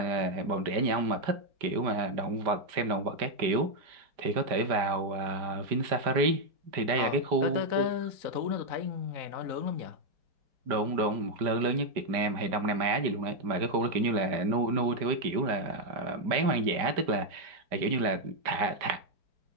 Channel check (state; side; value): late; left; 5.1 ms